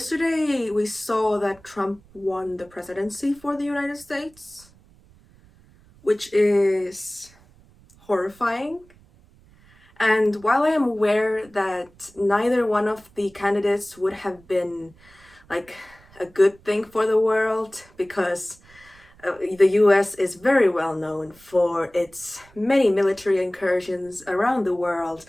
we saw that Trump won the presidency for the United States, which is horrifying. And while I am aware that neither one of the candidates would have been like a good thing for the world, because the US is very well known for its many military incursions around the world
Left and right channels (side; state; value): right; noise; rumble, 27 dB below the sound